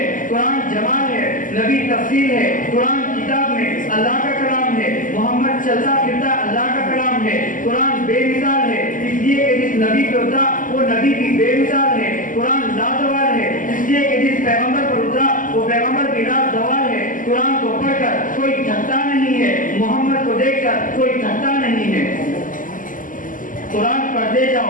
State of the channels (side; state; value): right; late; 0.38 ms